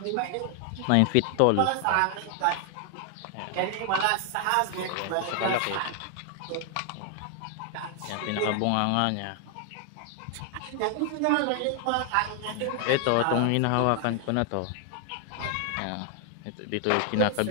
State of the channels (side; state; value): both; different; correlation 0.00